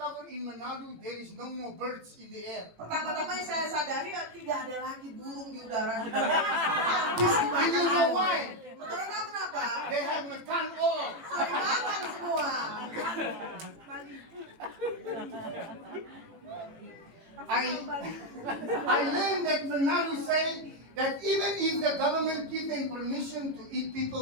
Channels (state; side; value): late; left; 18 ms